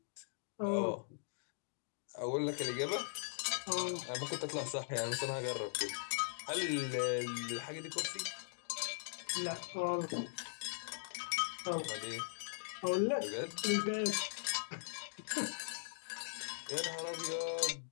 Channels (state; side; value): silent; right; digital silence